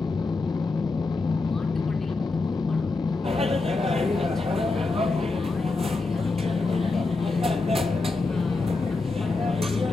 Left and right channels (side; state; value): right; quieter; 3.6 dB